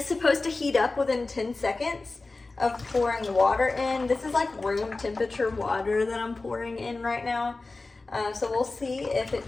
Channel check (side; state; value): right; quieter; 3.5 dB